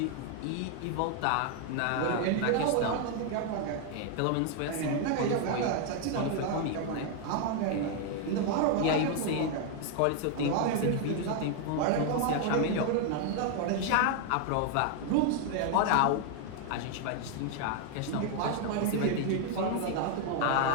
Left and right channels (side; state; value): both; different; correlation 0.00